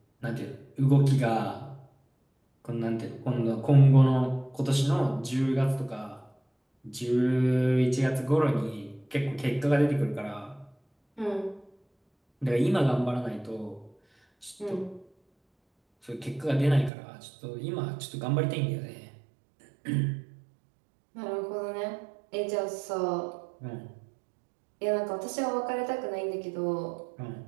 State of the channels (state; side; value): drops out; left; at 16.9 s